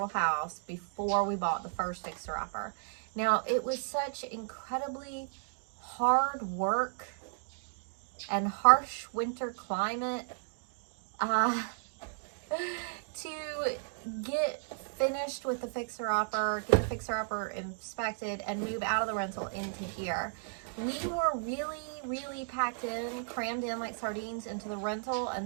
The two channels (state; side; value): silent; left; digital silence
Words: house before we bought the first fixer-upper. Now, it was such incredibly hard work and harsh winter climate to get finished with the fixer-upper, get the fixer-upper inspected, and move out of the rental into here. We were really packed in, crammed in like sardines into the rental,